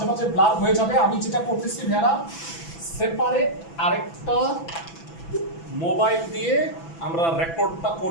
মাঝে ব্লার হয়ে যাবে। আমি যেটা করতেছি ভেড়া, সেপারেট আরেকটা মোবাইল দিয়ে আমরা রেকর্ডটা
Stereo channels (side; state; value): right; late; 6.0 ms